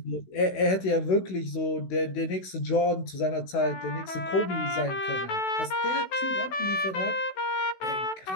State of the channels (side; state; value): right; late; 16 ms